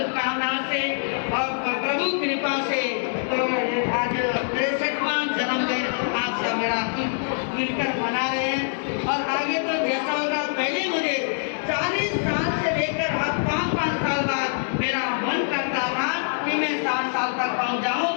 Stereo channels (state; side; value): silent; right; digital silence